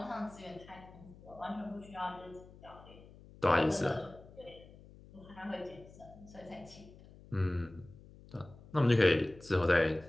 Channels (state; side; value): noise; left; hum, 21 dB below the sound